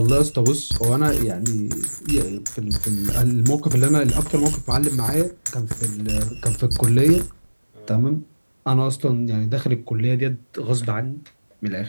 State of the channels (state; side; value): inverted; both; correlation -1.00